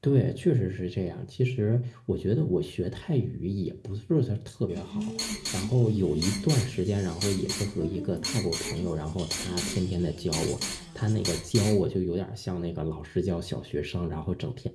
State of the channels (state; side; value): identical; both; correlation 1.00